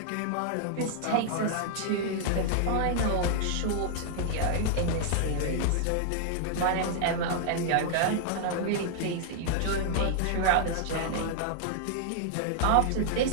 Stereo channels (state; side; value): different; both; correlation -0.01